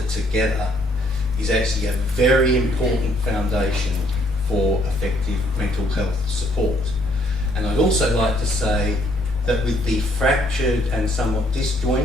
together is actually a very important foundation for effective mental health support. And I'd also like to say that with the fractured and somewhat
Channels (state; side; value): normal; both; correlation 0.65